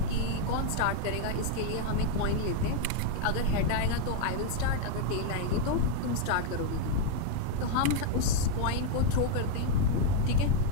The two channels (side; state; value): both; different; correlation 0.00